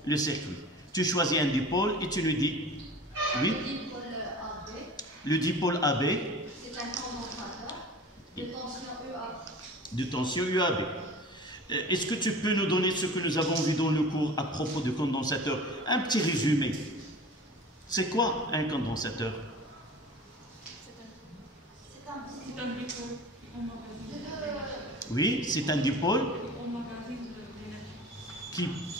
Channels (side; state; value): both; normal; correlation 0.39